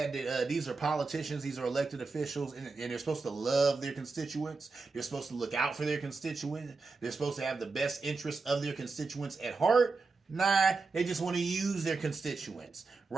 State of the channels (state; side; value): quieter; left; 4.2 dB